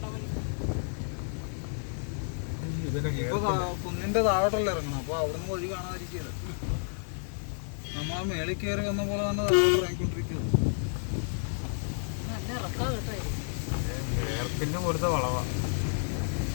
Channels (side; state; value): right; silent; 57 dB below the other